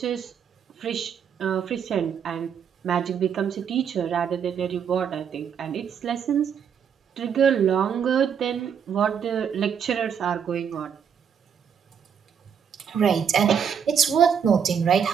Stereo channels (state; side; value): quieter; left; 7.6 dB